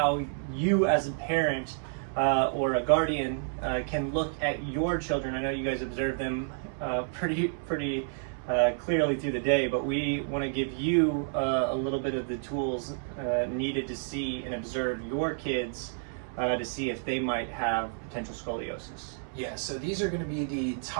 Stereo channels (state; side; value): silent; left; 58 dB below the other